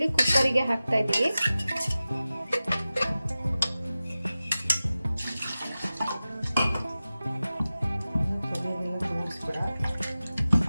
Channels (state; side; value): inverted; both; correlation -0.95